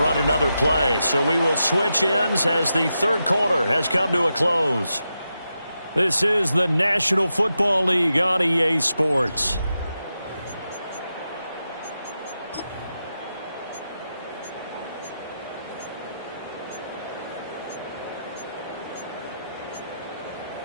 another play. So we will switch ends as the third quarter has come to a close. This is the National Football League on EA Sports.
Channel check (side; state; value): both; inverted; correlation -0.88